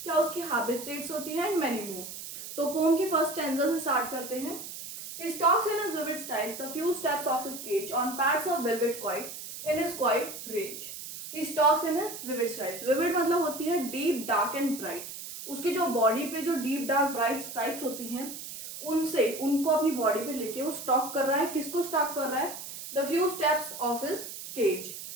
क्या उसकी हैबिटेट्स होती हैं एंड मैनी मोर. तो पोम की फर्स्ट स्टैंजा से स्टार्ट करते हैं. He stalks in his vivid styles the few steps of his cage on pads of velvet quiet in his quiet rage. He stalks in his vivid styles. Vivid मतलब होती है deep, dark and bright. उसकी जो बॉडी पे जो deep, dark, bright stripes होती हैं उनसे उनको अपनी बॉडी पे लेके वो स्टॉक कर रहा है. किसको स्टॉक कर रहा है? The few steps of his cage.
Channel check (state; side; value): noise; right; hiss, 10 dB below the sound